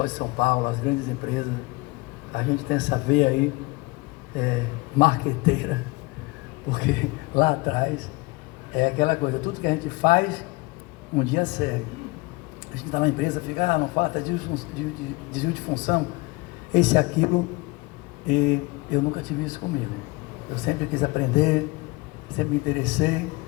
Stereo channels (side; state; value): right; quieter; 23.7 dB